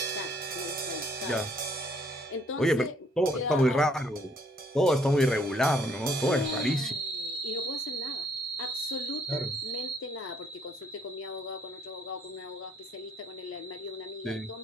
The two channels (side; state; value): both; normal; correlation 0.65